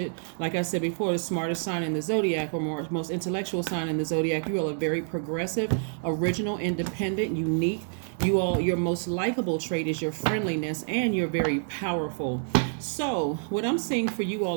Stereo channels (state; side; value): silent; left; 60 dB below the other